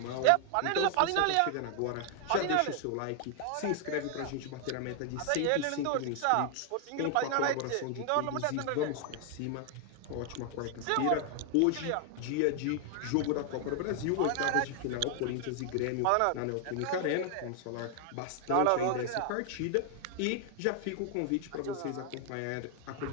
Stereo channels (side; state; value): both; different; correlation 0.00